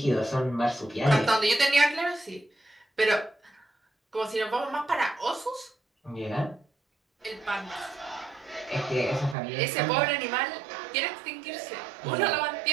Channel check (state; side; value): drops out; left; at 9.3 s